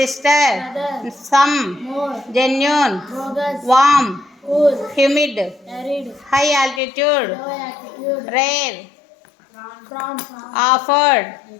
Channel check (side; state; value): right; drops out; at 6.8 s